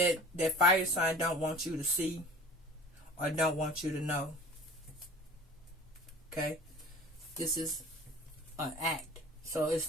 fire sign don't want you to see or don't want you to know. Okay? This is an act. So it's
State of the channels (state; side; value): normal; both; correlation 0.42